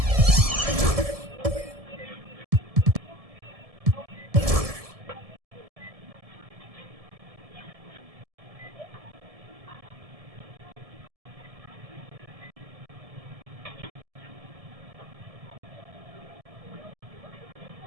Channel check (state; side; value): late; left; 1.7 ms